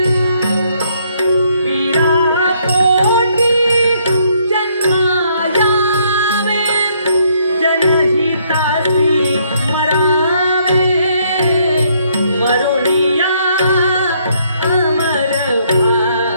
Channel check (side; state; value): both; inverted; correlation -0.69